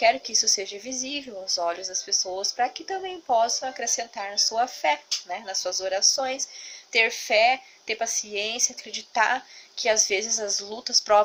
que isso seja visível aos olhos das pessoas, para que também possam acrescentar na sua fé, né, nas suas orações, ter fé, ter paciência, acreditar que às vezes as lutas,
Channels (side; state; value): both; identical; correlation 1.00